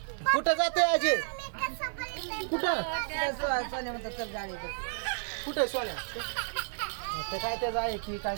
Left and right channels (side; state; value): left; silent; digital silence